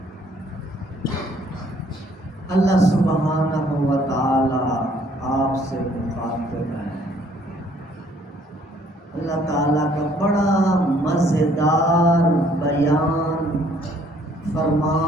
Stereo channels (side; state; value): both; normal; correlation 0.62